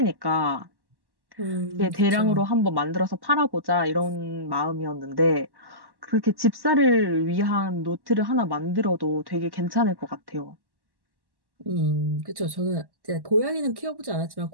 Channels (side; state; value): left; late; 1.1 ms